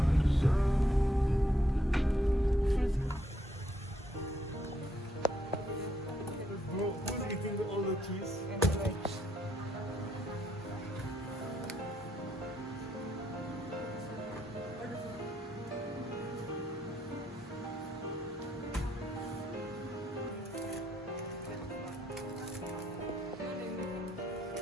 Bro, who's eating all the cheese? And veg.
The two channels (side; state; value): both; normal; correlation 0.74